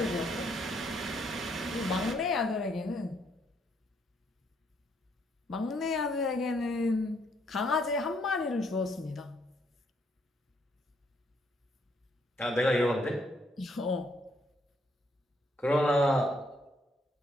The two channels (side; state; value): both; normal; correlation 0.71